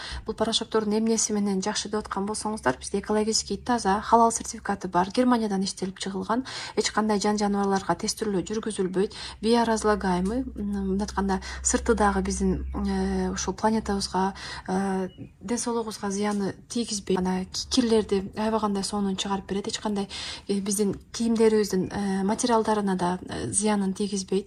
Бул порошоктордун эмнеси менен жакшы деп аткан болсоңуздар, бизде экологический таза, халал сертификаты бар, Германиядан иштелип чыгылган, эч кандай жаныбарларга тестирүү жүргүзүлбөйт, биоразлагаемый, мындай сырты дагы биздин ушул планетабызга, ден соолугубузга зыяны тийгизбейт. Ана кирлерди аябагандай сонун чыгарып берет, эч кандай биздин кийимдерибиздин материалдарына да зыянын тийгизбейт.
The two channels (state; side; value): identical; both; correlation 1.00